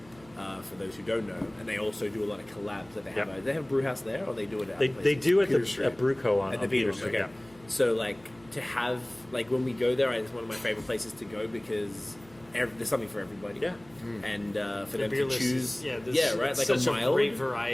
for those who don't know, and they also do a lot of collabs that they have. Yeah. Do they have a brew house there, or they do it at They places? do at Peter the Street. at Brewco on At the on Peter Peter Street. okay. So like to have like when we go there, it's one of my favorite places to go because there's something for everybody. Yeah. And for The them beer to list choose, is, there's right, like such a mild great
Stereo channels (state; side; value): noise; right; hum, 26 dB below the sound